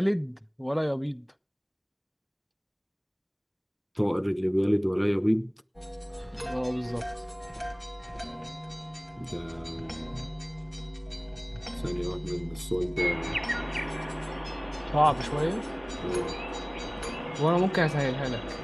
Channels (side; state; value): both; identical; correlation 1.00